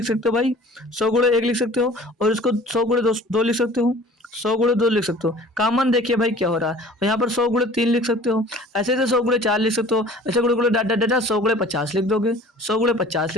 सकते हो भाई, 100 गुणे 1 लिख सकते हो। और इसको 100 गुणे 2 लिख सकते हो, 100 गुणे 2 लिख सकते हो। कॉमन देखिए भाई क्या हो रहा है। और यहाँ पर 100 गुणे 3 लिख सकते हो, ऐसे 100 गुणे 4 लिख सकते हो, ऐसे गुणे गुणे डाट डाट डाट 100 गुणे 50 लिख दोगे, 100 गुणे 50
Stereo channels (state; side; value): normal; both; correlation 0.47